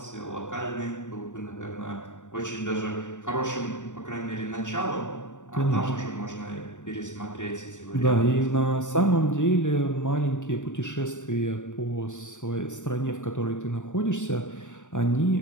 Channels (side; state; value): right; late; 0.86 ms